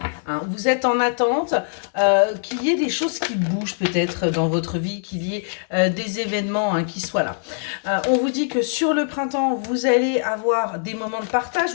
Hein. Vous êtes en attente qu'il y ait des choses qui bougent peut-être dans votre vie, qu'il y ait des événements hein, qui soient là. On vous dit que sur le printemps, vous allez avoir des moments de partage,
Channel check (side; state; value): right; silent; 64 dB below the other